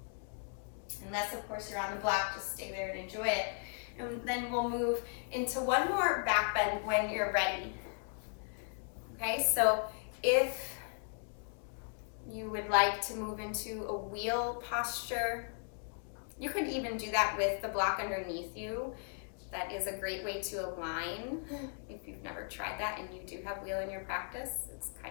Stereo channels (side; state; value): right; silent; 53 dB below the other